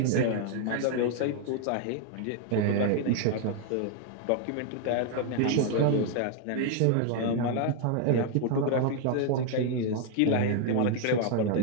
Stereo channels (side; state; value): both; different; correlation 0.00